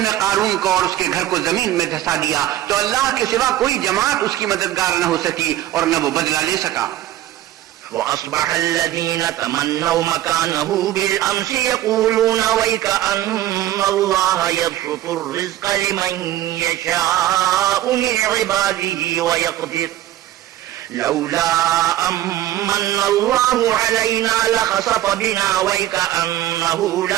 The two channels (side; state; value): left; quieter; 13.8 dB